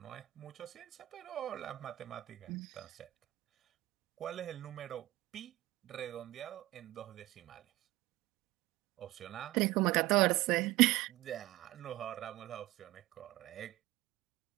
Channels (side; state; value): left; quieter; 17.9 dB